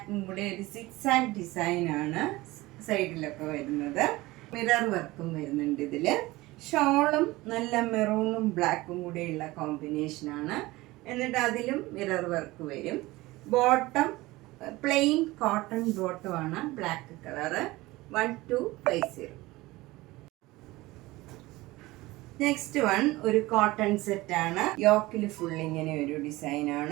കൂടെ ഒരു സിക്സാക് ഡിസൈനാണ് സൈഡിലൊക്കെ വരുന്നത്. മിറർ വർക്കും വരുന്നുണ്ട് ഇതിൽ. ഷോളും നല്ല മെറൂണും ബ്ലാക്കും കൂടെയുള്ള കോമ്പിനേഷനാണ്. എന്നിട്ട് അതിലും മിറർ വർക്ക് വരും. ബോട്ടം പ്ലെയിൻ കോട്ടൺ ബോട്ടമാണ്, ബ്ലാക്ക് കളറ്. 1250. നെക്സ്റ്റ് വൺ ഒരു കോട്ടൺ സെറ്റാണ്. യോക്കിൽ ഫുൾ ഇങ്ങനെ ഒരു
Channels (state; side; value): quieter; left; 19.8 dB